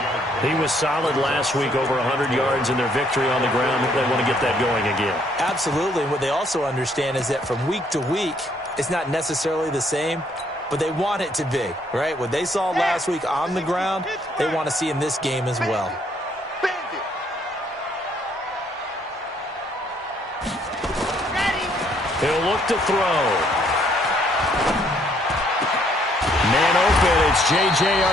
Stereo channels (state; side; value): normal; both; correlation 0.67